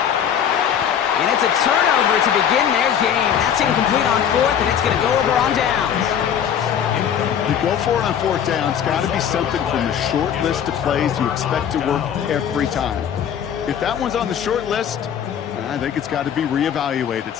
And it's a turnover to begin their game. That's incomplete on 4th, and it's going to go over on downs. You go for it on 4th down. It's got to be something from the short list of plays you expect to work every time. If that one's on the short list, I think it's got to be reevaluated.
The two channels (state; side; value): quieter; right; 8.7 dB